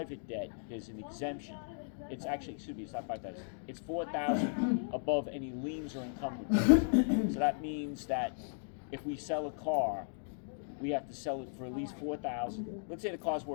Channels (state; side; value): silent; right; digital silence